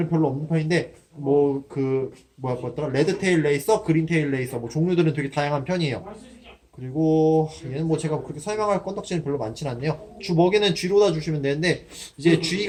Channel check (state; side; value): identical; both; correlation 1.00